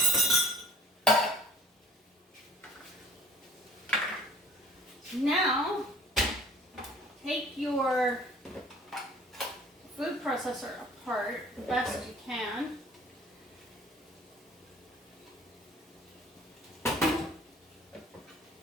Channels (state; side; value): normal; both; correlation 0.50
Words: Now, take your food processor apart the best you can.